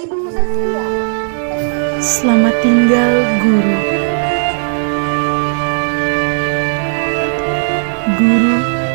Saskia. Selamat tinggal, Guru. Guru,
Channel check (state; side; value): silent; left; digital silence